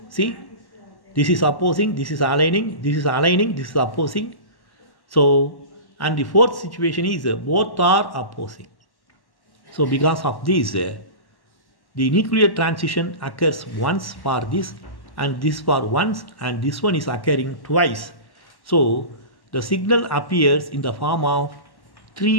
See, this is opposing, this is aligning, this is aligning, this is opposing. So, and the fourth situation is both are opposing. So because of this, the nuclear transition occurs once for this and this for once and this one is occurring twice. So the signal appears in the form of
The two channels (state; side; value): late; right; 1.1 ms